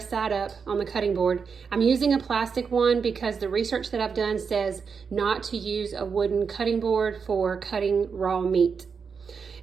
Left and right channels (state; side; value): quieter; left; 5.8 dB